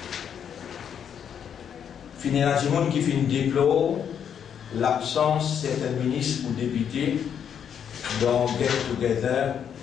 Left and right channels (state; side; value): quieter; right; 8.2 dB